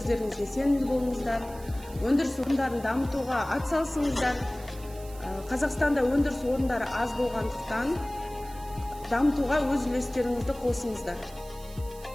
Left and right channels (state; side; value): noise; right; hiss, 20 dB below the sound